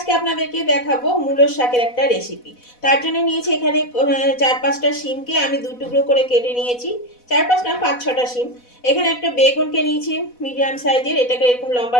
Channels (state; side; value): late; right; 4.1 ms